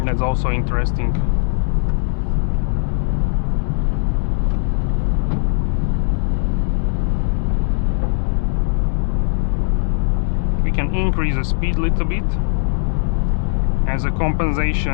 That's also interesting. We can increase the speed a little bit as a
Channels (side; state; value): right; silent; digital silence